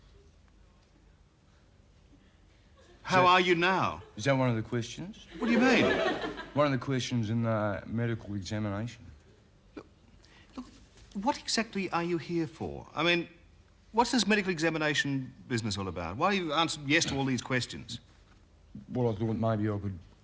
How are you now? Is that one of the questions? What do you mean? One of the questions in the medical examination. Look, what exactly are you here for? I mean, what's this medical examination business all about? Why have you answered yes to all these questions? Well, I thought maybe I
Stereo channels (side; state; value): both; identical; correlation 1.00